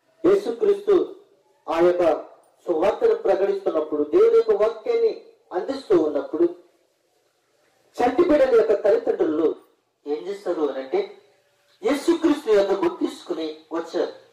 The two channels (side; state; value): both; identical; correlation 1.00